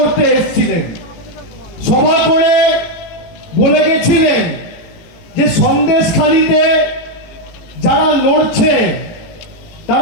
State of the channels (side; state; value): right; late; 18 ms